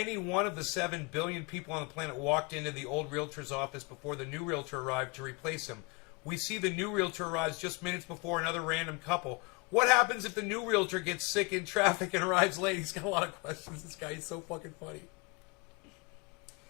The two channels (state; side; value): quieter; right; 28.7 dB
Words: one of the 7 billion people on the planet walked into the old realtor's office before the new realtor arrived to replace him? We see the new realtor arrives just minutes before another random couple. What happens if the new realtor gets sick in traffic and arrives late? He's got a lot of questions. This guy is so fucking funny.